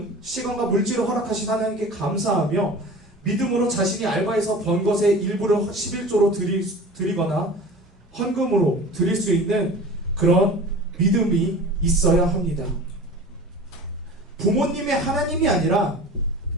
시간과 물질을 허락하신 하나님께 감사하며 믿음으로 자신이 알바해서 번 것의 일부를 11조로 드리거나 헌금으로 드릴 수 있는 그런 믿음이 있어야 합니다. 부모님의 하나님이 아니라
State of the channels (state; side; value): normal; both; correlation 0.38